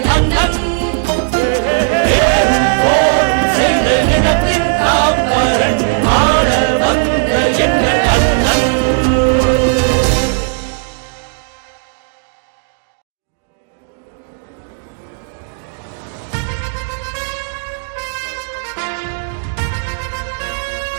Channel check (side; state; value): left; silent; digital silence